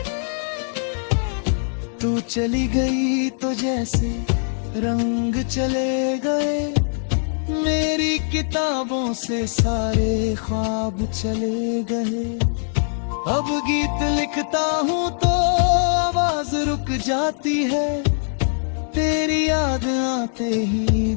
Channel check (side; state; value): right; silent; 64 dB below the other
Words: तू चली गई तो जैसे रंग चले गए, मेरी किताबों से सारे ख्वाब चले गए। अब गीत लिखता हूँ तो आवाज रुक जाती है, तेरी याद आते ही